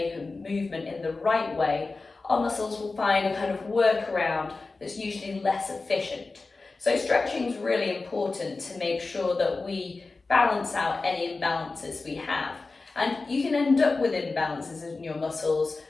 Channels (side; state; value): right; quieter; 3.7 dB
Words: a movement in the right way, our muscles will find a kind of workaround that's usually less efficient. So stretching is really important to make sure that we balance out any imbalances we have. And you can end up with imbalances in your muscles